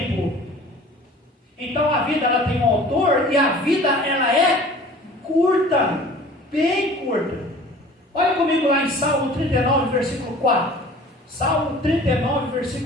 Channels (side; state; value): both; normal; correlation 0.46